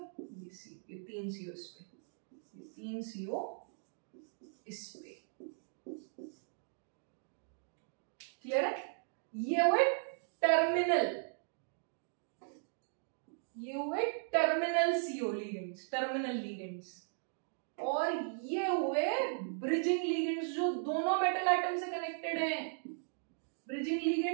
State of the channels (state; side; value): silent; left; digital silence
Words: ये CO, ये 3 CO इस पे, ये 3 CO इस पे, क्लियर है? ये हुए टर्मिनल, ये हुए terminal CO ligands, terminal ligands, और ये हुए ब्रिजिंग लिगेंड्स जो दोनों मेटल आइटम से कनेक्टेड हैं। ब्रिजिंग